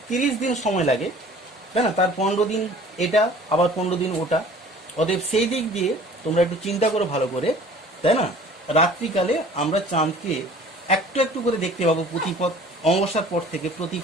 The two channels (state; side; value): normal; both; correlation 0.48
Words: 30 দিন সময় লাগে, তাই না? তার 15 দিন এটা, আবার 15 দিন ওটা। অতএব সেই দিক দিয়ে তোমরা একটু চিন্তা করো ভালো করে, তাই না? রাত্রিকালে আমরা চাঁদকে একটু একটু করে দেখতে পাবো প্রতিপদ, অমাবস্যার পর থেকে